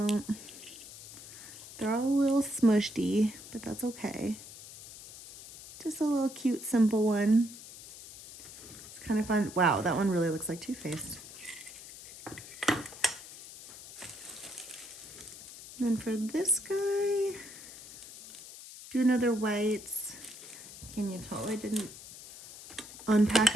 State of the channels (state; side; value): noise; left; hiss, 15 dB below the sound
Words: they're all a little smushy, but that's okay. Just a little cute, simple one. It's kind of fun. Wow, that one really looks like Too-Faced. Then for this guy, do another whites. Can you tell I didn't unpack